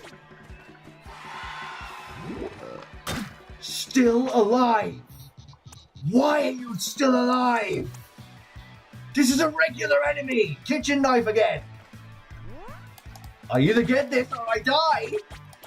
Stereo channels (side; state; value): both; identical; correlation 1.00